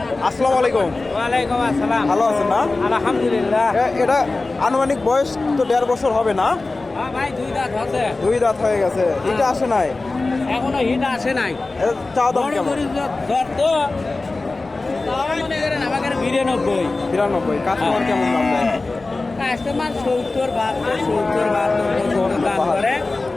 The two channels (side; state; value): right; quieter; 3.4 dB